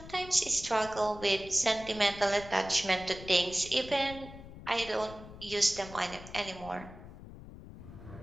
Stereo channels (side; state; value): left; noise; rumble, 15 dB below the sound